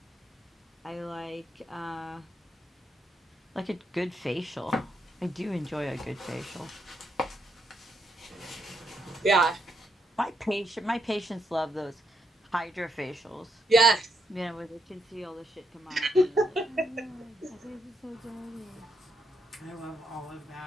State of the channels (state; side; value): normal; both; correlation 0.78